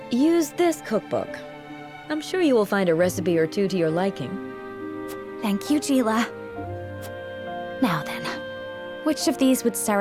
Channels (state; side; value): identical; both; correlation 1.00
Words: Use this cookbook. I'm sure you will find a recipe or two to your liking. Thank you, Gila. Now then, which of these would